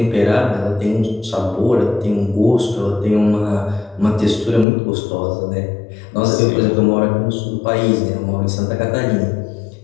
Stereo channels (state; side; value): drops out; right; at 4.7 s